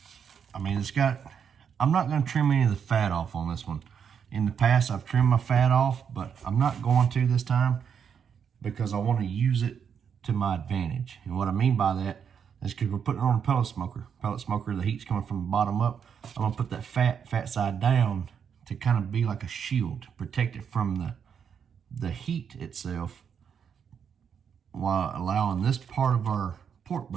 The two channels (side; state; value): left; quieter; 7.4 dB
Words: mean, it's got, I'm not going to trim any of the fat off on this one. In the past, I've trimmed my fat off, but I'm not going to this time because I want to use it to my advantage. And what I mean by that is because we're putting it on a pellet smoker. Pellet smoker, the heat's coming from the bottom up. I'm going to put that fat side down to kind of be like a shield, protect it from the heat itself, while allowing this part of our pork